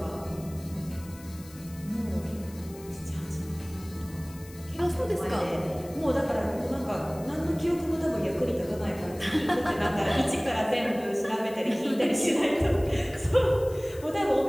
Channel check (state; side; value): noise; left; hiss, 20 dB below the sound